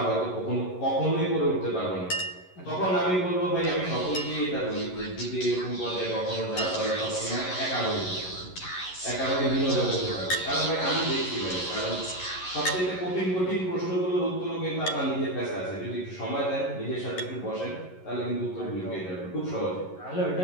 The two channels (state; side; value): late; right; 11 ms